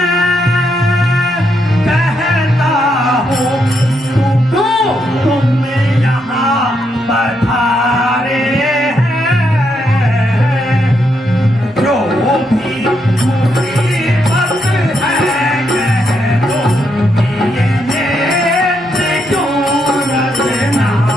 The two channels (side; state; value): both; normal; correlation 0.78